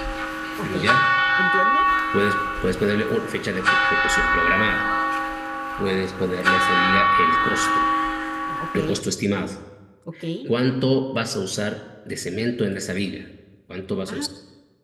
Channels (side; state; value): both; identical; correlation 1.00